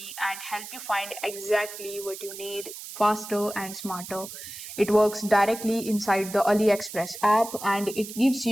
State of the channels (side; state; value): right; noise; hiss, 11 dB below the sound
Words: and help you find exactly what you need faster and smarter. It works directly inside the AliExpress app and it gives